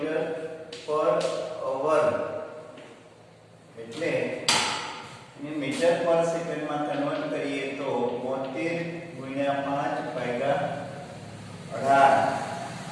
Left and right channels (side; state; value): both; identical; correlation 1.00